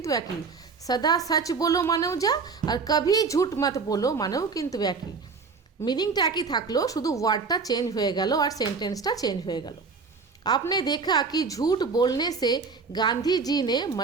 একই, সদা সচ বলো মানেও যা, আর কভি ঝুট মত বলো মানেও কিন্তু একই। মিনিংটা একই থাকলো, শুধু ওয়ার্ডটা চেঞ্জ হয়ে গেল আর সেন্টেন্সটা চেঞ্জ হয়ে গেল। आपने देखा कि झूठ बोलने से गांधी जी ने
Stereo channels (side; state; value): left; quieter; 4.9 dB